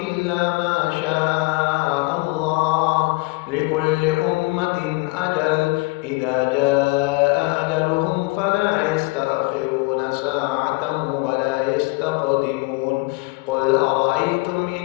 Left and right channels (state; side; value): quieter; right; 25.3 dB